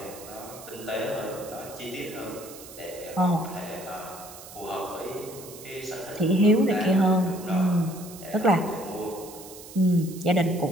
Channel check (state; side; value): noise; right; hiss, 16 dB below the sound